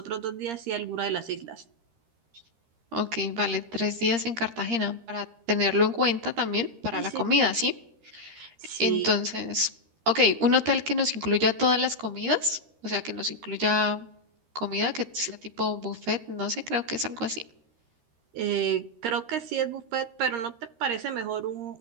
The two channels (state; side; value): late; left; 13 ms